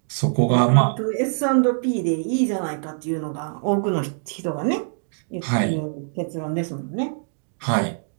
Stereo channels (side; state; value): left; silent; digital silence